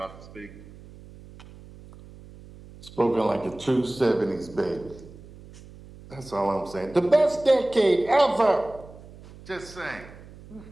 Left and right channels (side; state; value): right; noise; hum, 19 dB below the sound